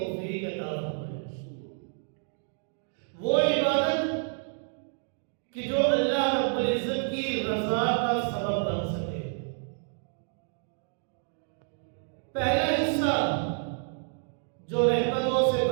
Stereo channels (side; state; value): left; silent; digital silence